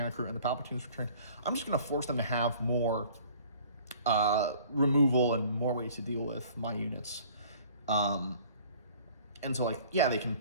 crew and the Palpatine's return. I'm just going to force them to have more removal and more ways to deal with my units. And so, they can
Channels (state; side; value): inverted; both; correlation -0.51